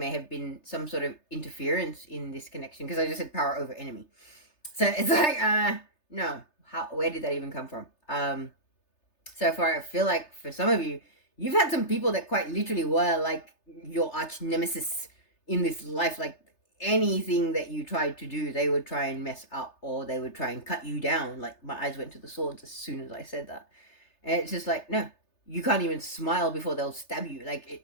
have been some sort of interference in this connection, because I just said power over enemy. So it's like, no, where did that even come from? So far, I feel like for some of you, you've had some people that quite literally were like your arch nemesis in this life. Like anything that you tried to do, they would try and mess up, or they would try and cut you down. Like my eyes went to the swords as soon as I said that. And it's just like, no, you can't even smile before they'll stab you. Like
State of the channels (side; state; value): right; late; 3.3 ms